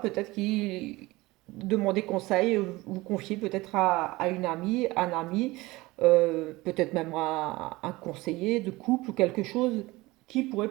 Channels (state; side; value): quieter; left; 20.6 dB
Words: qu'il demandez conseil, vous confiez peut-être à une amie, un ami, peut-être même à un conseiller de couple ou quelque chose qui pourrait